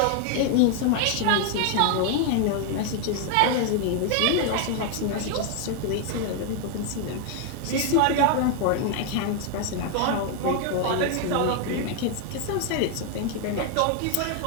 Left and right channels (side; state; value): both; different; correlation 0.01